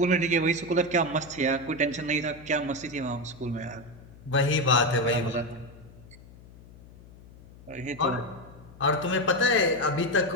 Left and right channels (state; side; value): noise; left; hum, 21 dB below the sound